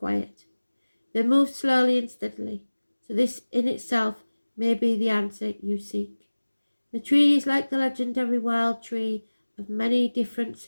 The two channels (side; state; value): both; inverted; correlation -1.00